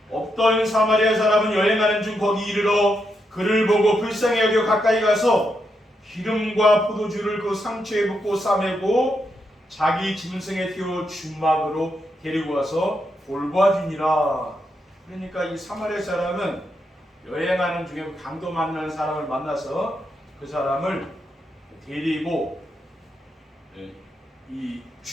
어떤 사마리아 사람은 여행하는 중 거기 이르러 그를 보고 불쌍히 여겨 가까이 가서 기름과 포도주를 그 상처에 붓고 싸매고 자기 짐승에 태워 주막으로 데리고 와서 돌보아주니라. 그러니까 이 사마리아 사람은 여행하는 중에 강도 만나는 사람을 만나서 그 사람을 데리고 이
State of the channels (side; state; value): both; normal; correlation 0.82